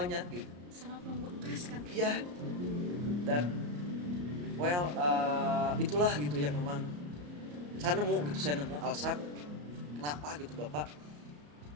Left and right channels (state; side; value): late; left; 34 ms